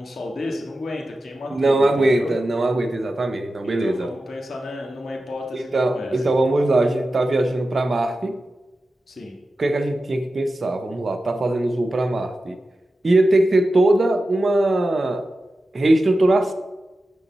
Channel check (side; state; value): both; normal; correlation 0.93